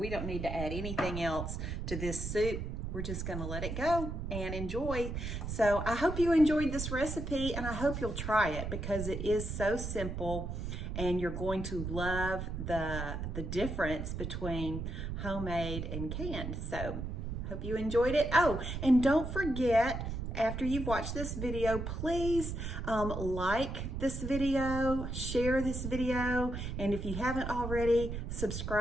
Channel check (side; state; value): right; noise; rumble, 5 dB below the sound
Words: don't need to add anything else to this soup. We're just gonna let it go and enjoy. So I hope you enjoyed this recipe, and I hope you'll try it, because it is so simple and you're going to love the difference between homemade and canned. So hope you enjoyed it. Oh, and don't forget, after you've watched this video, please like this video, share this video, and if you haven't already,